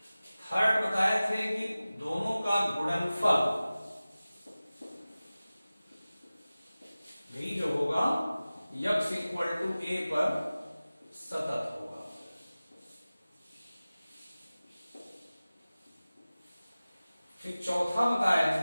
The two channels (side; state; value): both; inverted; correlation -0.97